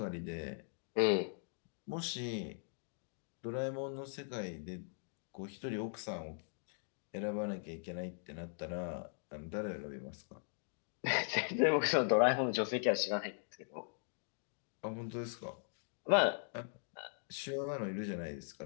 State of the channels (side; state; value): right; silent; digital silence